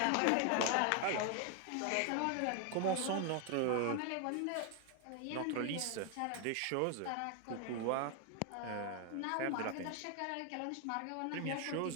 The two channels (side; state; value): both; different; correlation 0.00